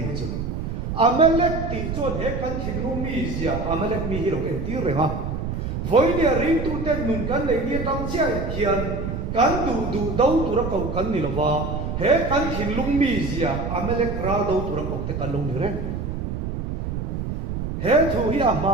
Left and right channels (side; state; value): right; noise; rumble, 4 dB below the sound